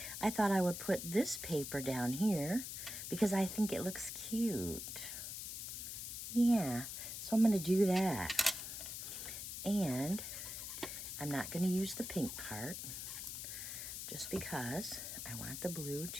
I thought I would put this paper down here because I think it looks cute. Yeah, so I'm going to do that. And I'm not going to use the pink part just because I want the blue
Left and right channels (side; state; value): left; noise; hiss, 6 dB below the sound